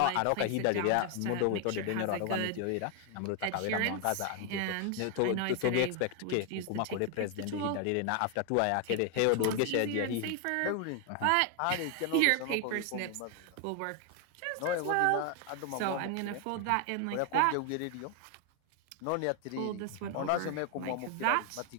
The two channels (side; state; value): both; different; correlation 0.01